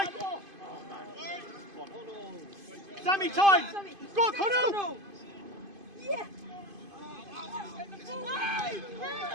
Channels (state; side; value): late; left; 2.5 ms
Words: Sammy, time! Go on, Connell! Yeah.